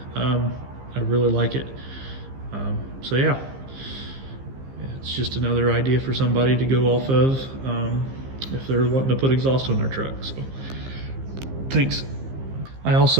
I really like it. So yeah, it's just another idea for somebody to go off of if they're wanting to put exhaust on their truck. So thanks. I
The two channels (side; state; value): left; late; 15 ms